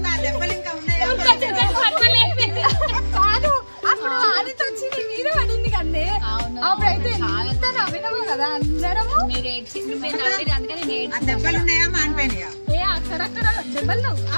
కాదు, అప్పుడు ఆదితో వచ్చి నీ మీద పడింది కదే. అప్పుడైతే ఎంత నవ్వినావు కదా అందరము. మీరు అందుకని దెబ్బలున్నాయా మానిపోయినాయా? అక్కడక్కడ దెబ్బలు.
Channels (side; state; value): both; inverted; correlation -1.00